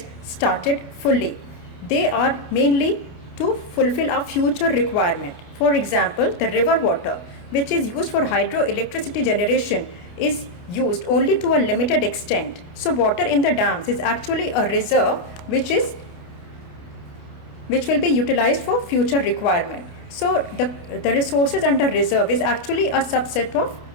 started fully. They are mainly to fulfill our future requirement. For example, the river water, which is used for hydroelectricity generation, is used only to a limited extent. So water in the dams is actually a reserve which will be utilized for future requirement. So the resources under reserve is actually a subset of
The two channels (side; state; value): right; late; 29 ms